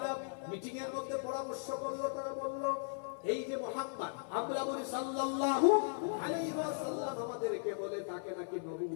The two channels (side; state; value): right; silent; 53 dB below the other